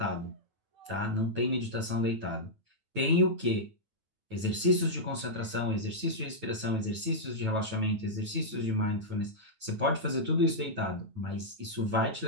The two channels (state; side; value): late; left; 9.2 ms